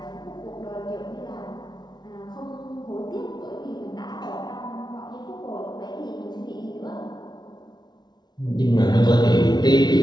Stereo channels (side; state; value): right; late; 0.20 ms